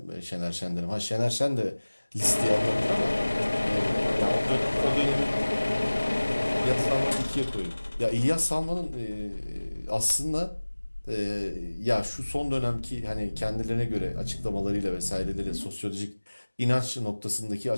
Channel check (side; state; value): both; inverted; correlation -1.00